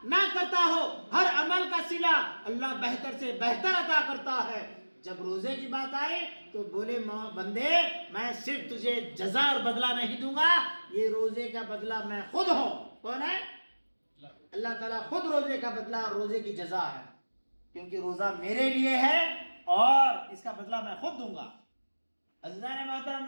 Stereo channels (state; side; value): inverted; both; correlation -1.00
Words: نہ کرتا ہو۔ ہر عمل کا صلہ اللہ بہتر سے بہتر عطا کرتا ہے۔ جب روزے کی بات آئی تو بولے بندے میں صرف تجھے جزا اور بدلہ نہیں دوں گا، یہ روزے کا بدلہ میں خود ہوں۔ کون ہے؟ اللہ تعالیٰ خود روزے کا بدلہ اور روزے کی جزا ہے، کیونکہ روزہ میرے لیے ہے اور اس کا بدلہ میں خود دوں گا۔ عزیزان محترم